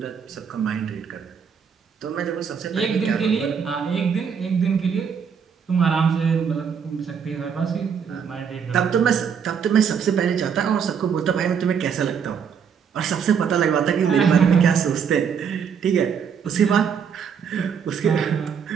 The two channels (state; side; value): quieter; left; 7.0 dB